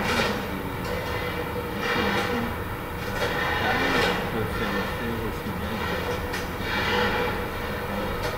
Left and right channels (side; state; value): both; identical; correlation 1.00